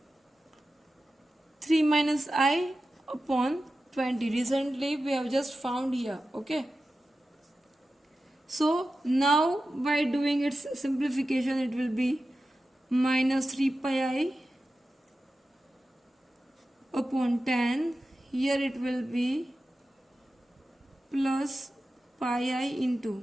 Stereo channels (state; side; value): normal; both; correlation 0.93